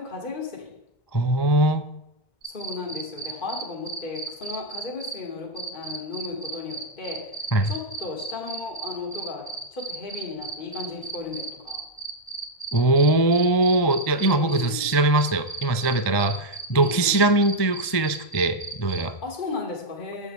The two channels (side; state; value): right; late; 1.2 ms